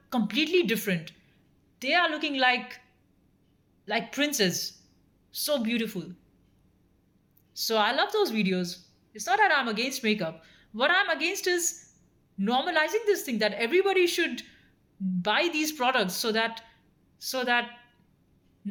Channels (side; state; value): both; identical; correlation 1.00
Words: completely different. They are looking like princes, so beautiful. So I love those videos. It's not that I'm against makeup. What I'm against is normalizing this thing that everybody should buy these products so that